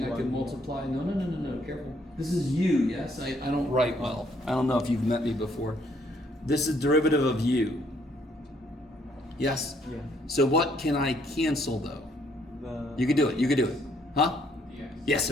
I can multiply? No, careful. This is u, yes? I don't write well. I don't know if you've met me before. This is derivative of u. Yes? Yeah. So what can I cancel though? The You could do it. Huh? Dx. Yes,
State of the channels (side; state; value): both; normal; correlation 0.68